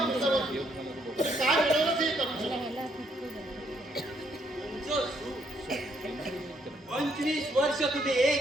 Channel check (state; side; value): normal; both; correlation 0.71